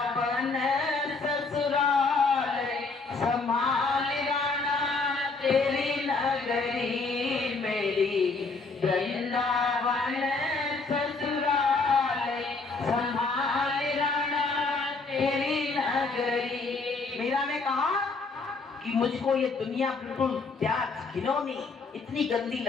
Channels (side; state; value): right; quieter; 4.0 dB